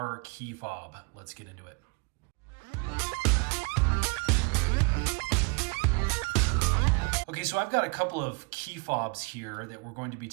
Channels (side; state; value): left; quieter; 32.9 dB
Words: key fob. Let's get into it. Okay, so I've got a couple of key fobs here that we're going to be